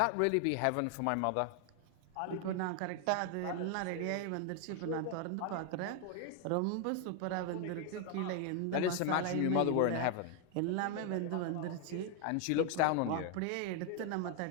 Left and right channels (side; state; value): both; different; correlation 0.01